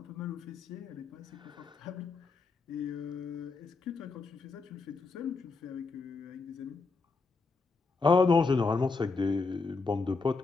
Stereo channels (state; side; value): quieter; right; 4.1 dB